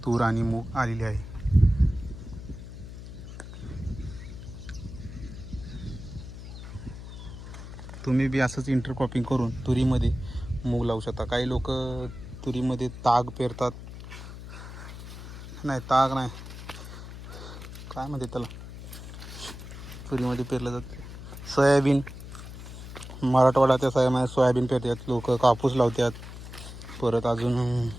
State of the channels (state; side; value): noise; left; hum, 12 dB below the sound